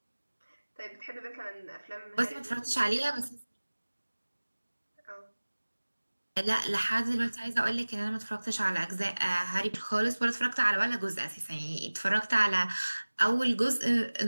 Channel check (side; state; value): both; inverted; correlation -1.00